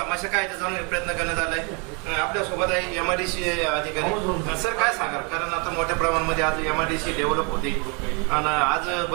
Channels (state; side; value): quieter; left; 33.4 dB